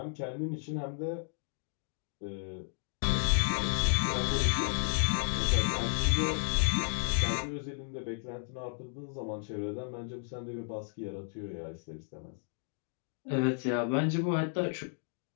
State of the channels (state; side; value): silent; right; digital silence